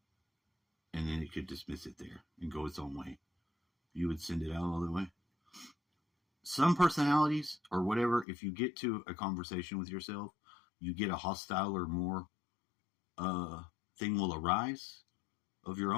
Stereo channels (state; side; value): drops out; right; at 8.2 s